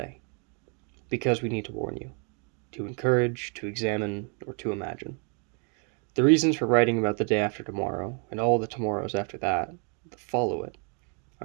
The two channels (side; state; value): left; quieter; 38.2 dB